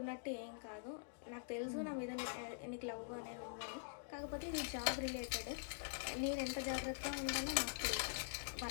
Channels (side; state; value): right; silent; digital silence